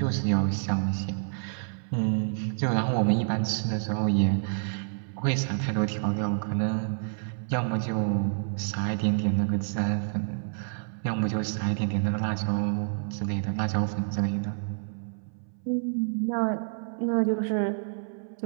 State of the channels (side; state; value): left; silent; 59 dB below the other